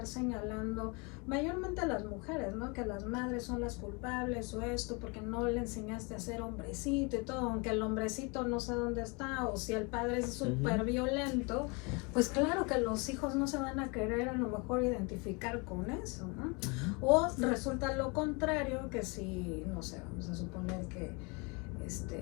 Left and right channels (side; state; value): right; quieter; 30.3 dB